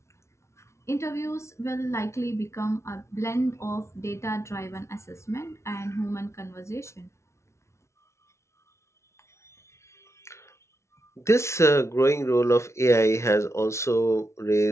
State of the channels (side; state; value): right; late; 0.13 ms